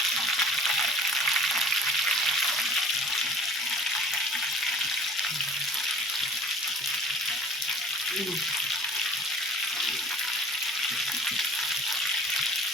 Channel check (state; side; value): normal; both; correlation 0.48